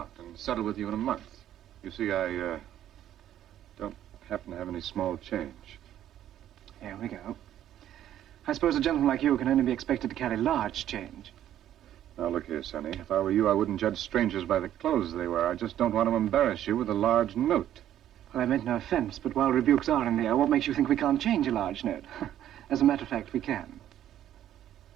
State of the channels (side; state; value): left; quieter; 11.5 dB